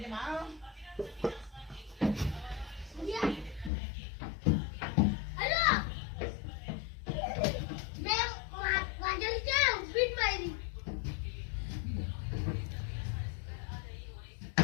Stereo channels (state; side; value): drops out; right; at 3.7 s